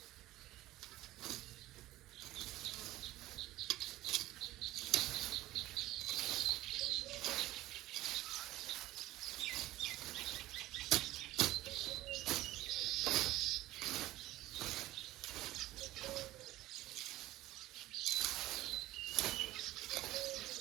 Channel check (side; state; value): left; quieter; 16.5 dB